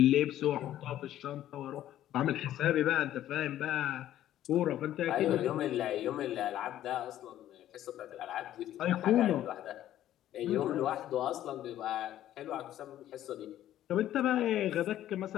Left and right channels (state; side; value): quieter; right; 12.5 dB